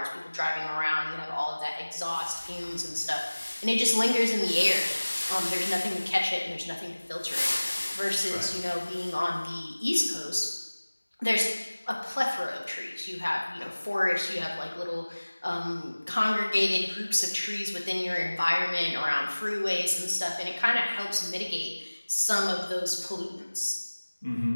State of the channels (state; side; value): inverted; both; correlation -1.00